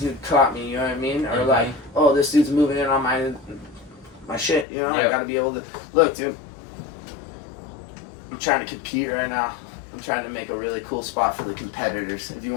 caught me, you know what I mean? Or Mhm. like, oh, this dude's moving in on my shit, you know? Yep. I gotta be able to, look, dude, I'm trying to compete right now. I'm trying to make a really cool spot for the competitors. If you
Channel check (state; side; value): drops out; right; at 4.7 s